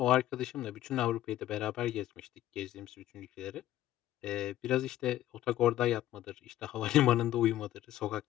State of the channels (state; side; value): quieter; right; 13.7 dB